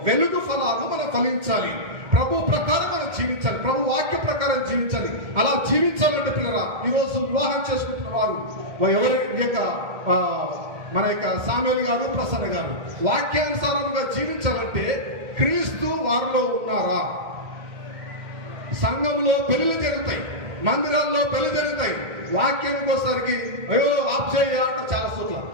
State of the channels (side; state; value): left; late; 2.1 ms